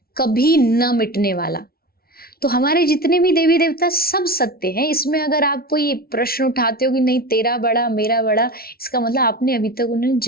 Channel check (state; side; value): late; right; 0.44 ms